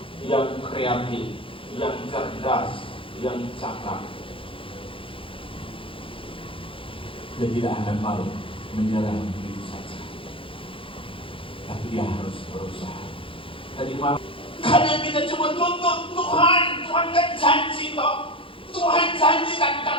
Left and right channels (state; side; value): late; right; 0.25 ms